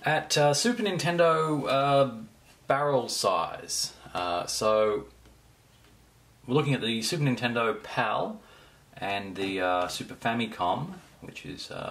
at Super Nintendo barrel size. So we're looking at the Super Nintendo PAL and the Super Famicom, which is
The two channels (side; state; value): both; identical; correlation 1.00